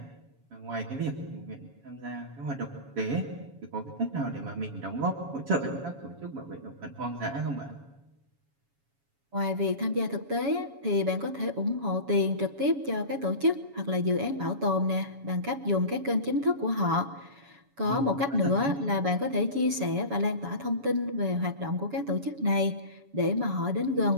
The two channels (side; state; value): left; late; 7.1 ms